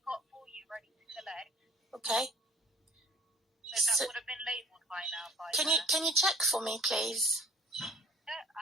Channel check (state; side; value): normal; both; correlation 0.55